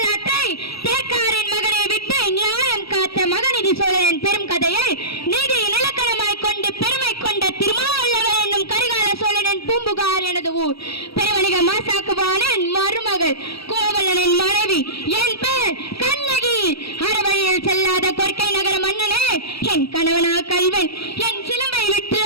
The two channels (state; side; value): late; right; 0.76 ms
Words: தேக்காரின் மகனை விட்டு நியாயம் காத்த மகநிதி சோழரின் பெரும் கதையை நீதி நிலக்கணமாய் கொண்டு பெருமை கொண்ட திருமாவளவன் என்னும் கரிகால சோழனின் பூம்புகார் எனது ஊர். பெருவணிக மாசாக்குவானின் மருமகள் கோவலனின் மனைவி என் பேர் கண்ணகி. அறவழியில் செல்லாத கொற்கை நகர மன்னனே என் கணவனா கல்வன். என் சிலம்பை விட்டு